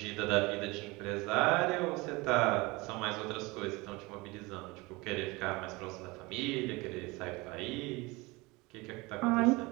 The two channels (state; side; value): quieter; left; 23.9 dB